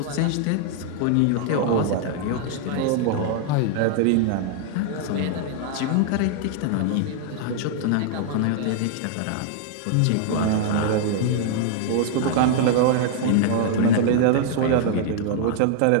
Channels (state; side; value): different; both; correlation -0.01